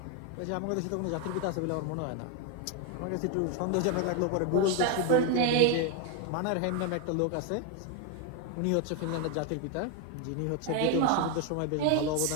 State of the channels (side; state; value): both; different; correlation 0.01